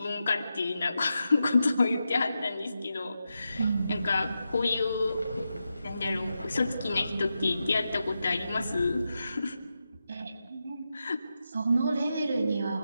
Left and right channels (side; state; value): both; inverted; correlation -0.88